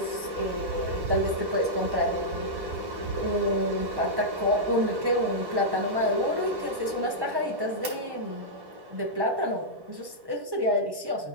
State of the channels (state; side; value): late; left; 1.1 ms